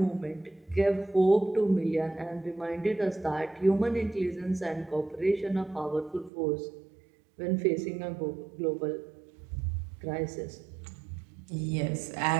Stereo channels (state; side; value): drops out; left; at 6.3 s